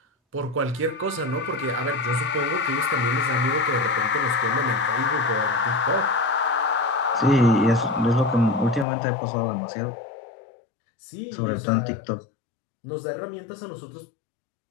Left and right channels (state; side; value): drops out; right; at 8.8 s